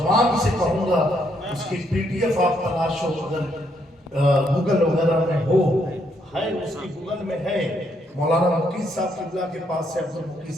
سے کہوں گا اس کی پی ڈی ایف آپ تلاش ہو اگر گوگل وغیرہ میں ہو ہے اس کی گوگل میں ہے مولانا مقید صاحب قبلہ کے پاس ہے عبد المقید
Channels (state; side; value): normal; both; correlation 0.74